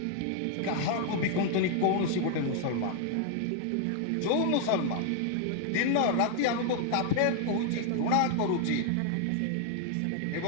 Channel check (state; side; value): different; both; correlation 0.00